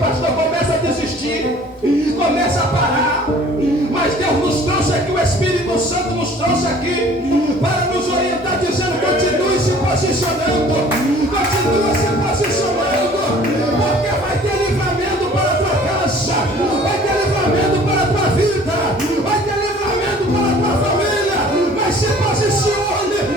começa a desistir, começa a parar. Mas Deus nos trouxe aqui, o Espírito Santo nos trouxe aqui para nos orientar, dizendo: continue se posicionando, continue se posicionando, porque vai ter livramento para a tua casa, vai ter livramento para a tua vida, vai ter livramento para a tua família. Mas se posicione,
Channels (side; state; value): both; normal; correlation 0.51